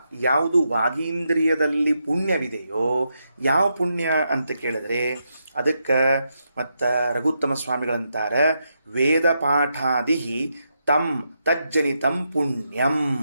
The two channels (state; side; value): inverted; both; correlation -0.83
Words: ಯಾವುದು ವಾಗೀಂದ್ರಿಯದಲ್ಲಿ ಪುಣ್ಯವಿದೆಯೋ, ಯಾವ ಪುಣ್ಯ ಅಂತ ಕೇಳಿದ್ರೆ ಅದಕ್ಕೆ ಮತ್ತು ರಘುತ್ತಮ ಸ್ವಾಮಿಗಳಂತಾರೆ, ವೇದ ಪಾಠಾದಿ ತಂ ತಜ್ಜನಿತಂ ಪುಣ್ಯಂ.